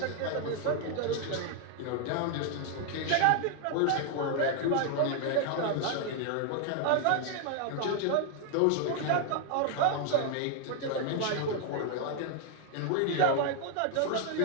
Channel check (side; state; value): both; different; correlation 0.00